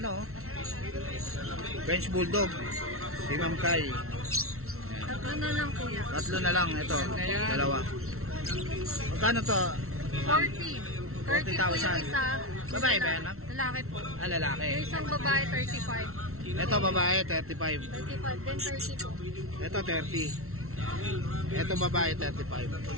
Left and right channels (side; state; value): left; late; 0.63 ms